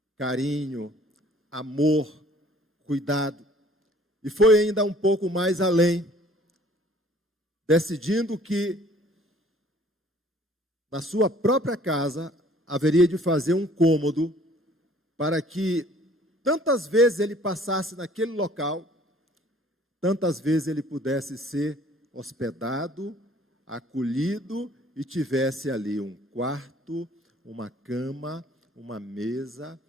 carinho, amor, cuidado. E foi ainda um pouco mais além, decidindo que na sua própria casa haveria de fazer um cômodo para que tantas vezes ele passasse naquele local, tantas vezes ele pudesse ser hospedado, acolhido e tivesse ali um quarto, uma cama, uma mesa,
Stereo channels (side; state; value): both; normal; correlation 0.55